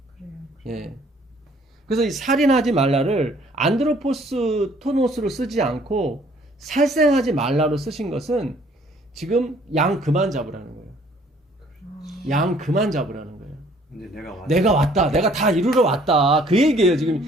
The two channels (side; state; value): both; normal; correlation 0.59